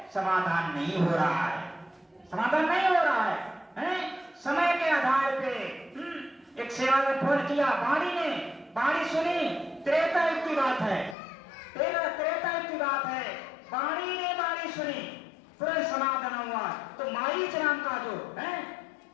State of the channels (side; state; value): right; drops out; at 11.2 s